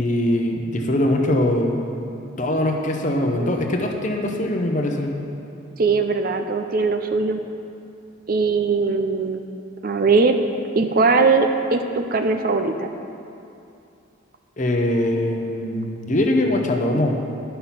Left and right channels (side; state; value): both; normal; correlation 0.38